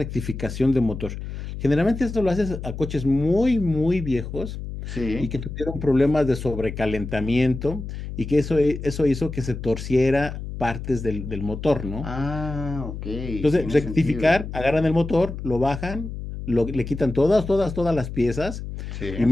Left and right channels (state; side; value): noise; left; hum, 8 dB below the sound